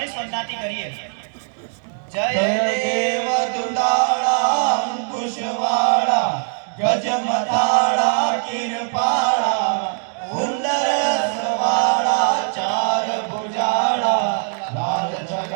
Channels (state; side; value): silent; left; 58 dB below the other